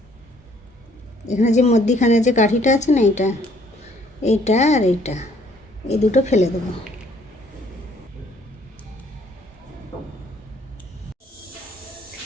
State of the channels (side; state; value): both; normal; correlation 0.62